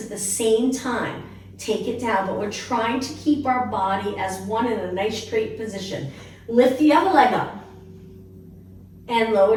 at the same time. Take it down, but we're trying to keep our body as one in a nice straight position. Lift the other leg up and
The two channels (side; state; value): both; identical; correlation 1.00